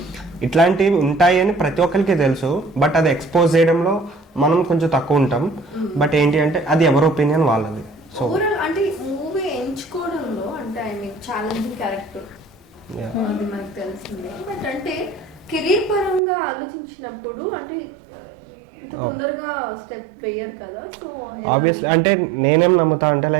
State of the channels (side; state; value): left; drops out; at 16.2 s